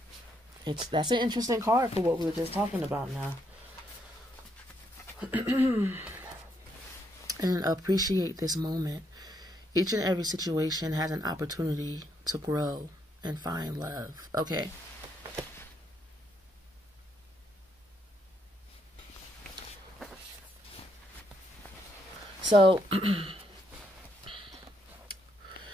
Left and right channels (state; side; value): normal; both; correlation 0.75